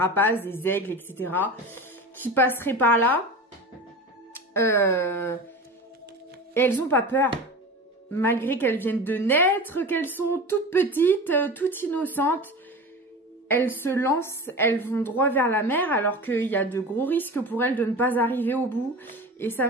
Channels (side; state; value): both; normal; correlation 0.32